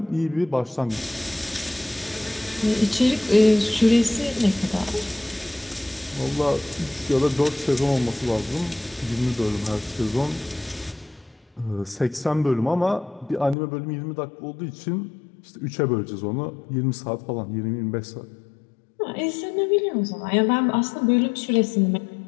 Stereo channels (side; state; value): right; drops out; at 13.6 s